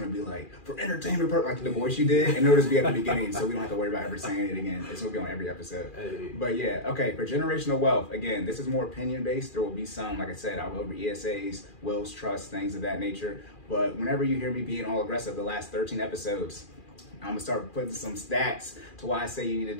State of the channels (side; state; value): right; late; 2.4 ms